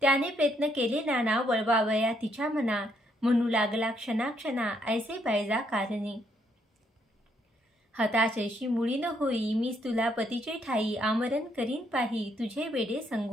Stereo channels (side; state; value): both; normal; correlation 0.72